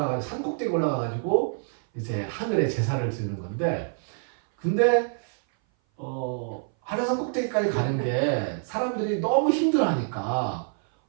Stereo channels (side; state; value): left; silent; 58 dB below the other